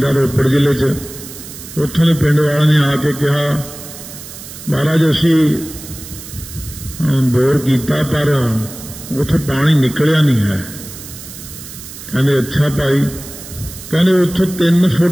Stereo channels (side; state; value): right; noise; hiss, 14 dB below the sound